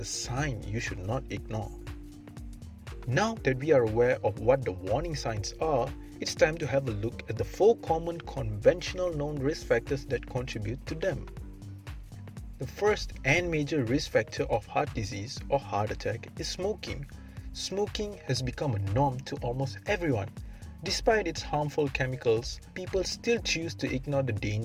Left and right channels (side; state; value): both; identical; correlation 1.00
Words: a sign you should not ignore. Now that we are aware of what the warning signs are, it's time to have a look at the 4 common conventional known risk factors that contribute to them. The first and major risk factor of heart disease or heart attack is smoking. Smoking has become a norm to almost everyone. Despite its harmful chemicals, people still choose to ignore the